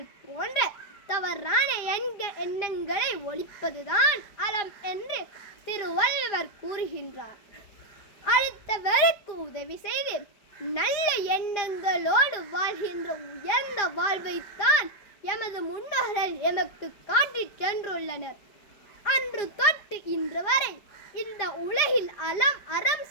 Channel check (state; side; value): late; right; 4.9 ms